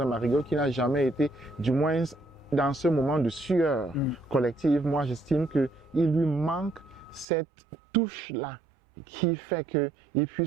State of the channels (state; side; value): drops out; left; at 7.2 s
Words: un marigot, qui n'a jamais été, du moins, dans ce moment de sueur collective, moi, j'estime qu'il lui manque cette touche-là qui fait qu'il